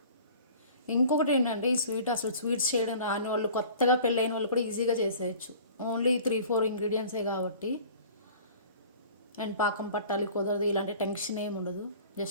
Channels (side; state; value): both; inverted; correlation -0.46